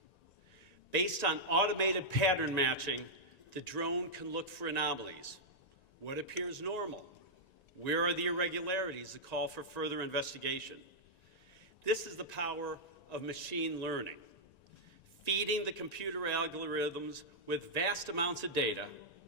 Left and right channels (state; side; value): late; right; 1.9 ms